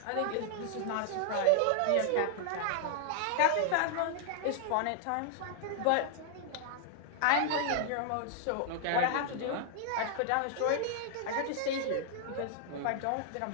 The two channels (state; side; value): different; both; correlation -0.01